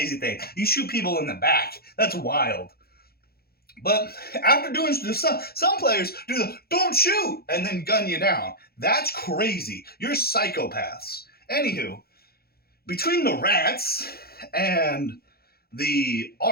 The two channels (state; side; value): late; right; 0.45 ms